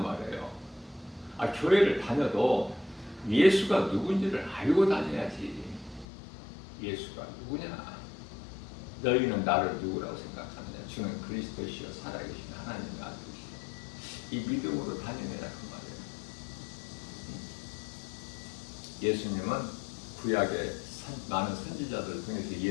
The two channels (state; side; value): drops out; right; at 6.1 s